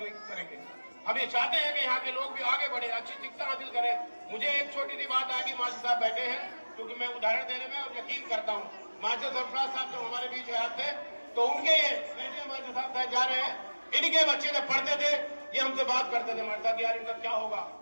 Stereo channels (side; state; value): both; inverted; correlation -1.00